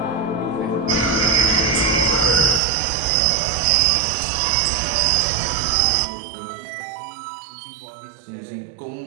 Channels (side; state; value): left; drops out; at 2.6 s